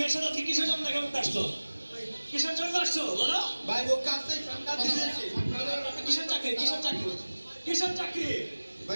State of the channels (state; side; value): inverted; both; correlation -1.00